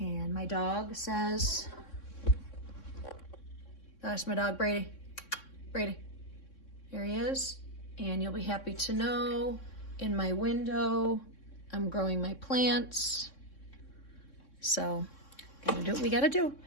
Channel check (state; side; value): late; right; 3.6 ms